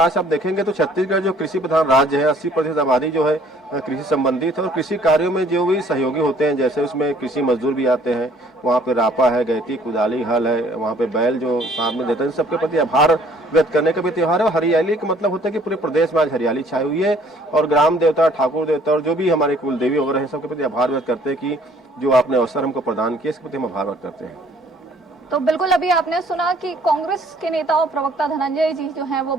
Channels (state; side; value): normal; both; correlation 0.59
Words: आप देखेंगे तो छत्तीसगढ़ जो कृषि प्रधान राज्य है, 80% आबादी जो है कृषि संबंधित है और कृषि कार्यों में जो भी सहयोगी होते हैं, जैसे उसमें कृषि मजदूर भी आते हैं, वहाँ पे रापा है, गैती, कुदाली, हल है, वहाँ पे बैल जो साथ में देते हैं, सबके प्रति आभार व्यक्त करने का भी त्योहार है। हरियाली का मतलब होता है कि पूरे प्रदेश में आज हरियाली छाई हुई है और ग्राम देवता, ठाकुर देवता और जो भी हमारे कुल देवी वगैरह हैं, सबके प्रति आभार व्यक्त करते हैं कि जो आपने अवसर हमको प्रदान किया, इसके प्रति हम आभार व्यक्त करते हैं। तो बिल्कुल, अभी आपने सुना कि कांग्रेस के नेता और प्रवक्ता धनंजय जी जो हैं वो